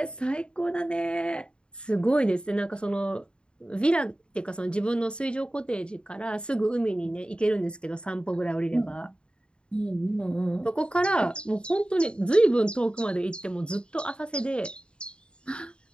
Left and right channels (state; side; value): late; right; 0.053 ms